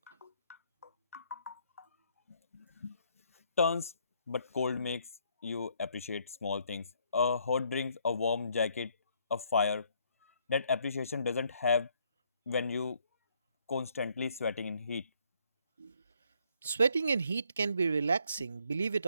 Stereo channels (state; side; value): inverted; both; correlation -0.70